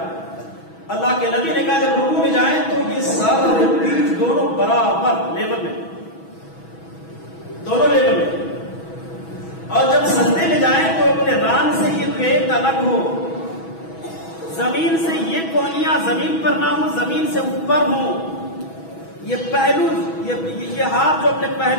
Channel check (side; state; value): right; late; 6.1 ms